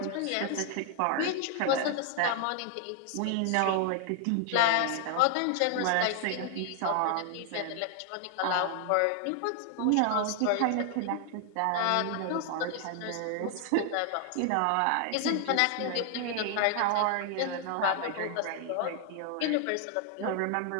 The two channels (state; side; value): different; both; correlation 0.00